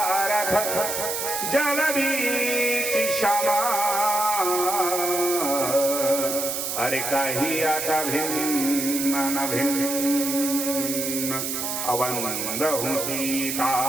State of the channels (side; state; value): right; noise; hiss, 2 dB below the sound